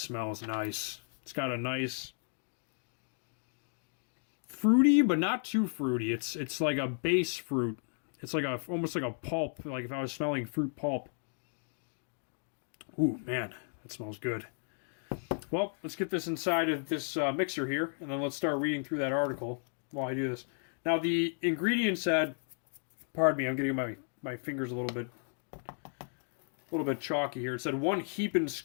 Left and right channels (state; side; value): silent; right; 55 dB below the other